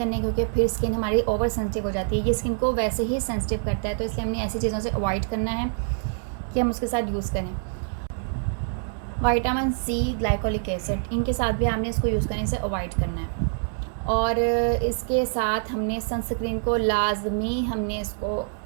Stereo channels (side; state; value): left; silent; 61 dB below the other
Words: क्योंकि फिर स्किन हमारी ओवर सेंसिटिव हो जाती है। ये स्किन को वैसे ही सेंसिटिव करता है, तो इसलिए हमने ऐसी चीज़ों से अवॉइड करना है कि हम उसके साथ यूज़ करें। विटामिन C, ग्लाइकोलिक एसिड, इनके साथ भी आपने इसको यूज़ करने से अवॉइड करना है। और इसके साथ हमने सनस्क्रीन को लाजमी हमने इसको